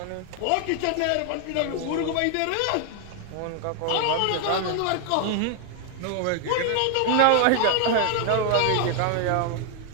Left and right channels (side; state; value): both; different; correlation 0.00